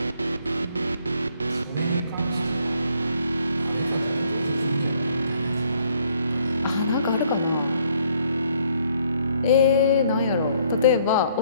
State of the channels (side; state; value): both; inverted; correlation -0.66